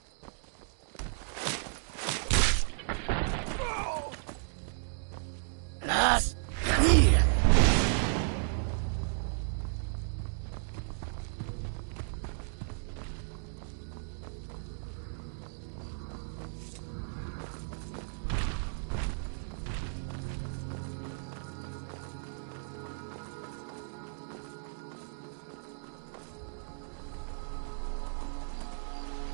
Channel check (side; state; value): left; silent; digital silence